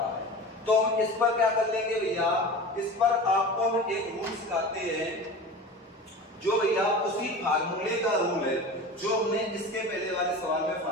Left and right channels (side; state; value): both; normal; correlation 0.33